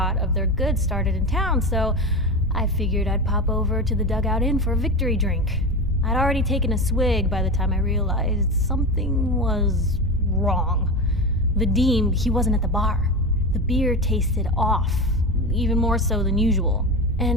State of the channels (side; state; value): both; normal; correlation 0.22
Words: of their goods started in town, so I figured I'd pop over to the Dugout Inn for a victory drink. I'd already taken a swig by the time I realized something was wrong. Vadim, he wasn't at the bar. The beer tasted off, even more so than usual.